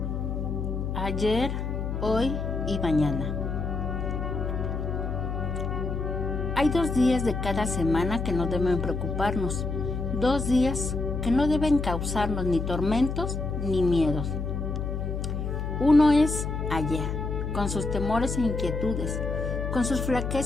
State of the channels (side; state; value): left; noise; hum, 3 dB below the sound